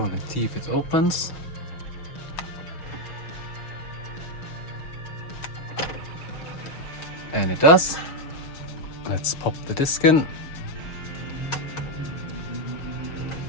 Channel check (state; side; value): late; right; 6.4 ms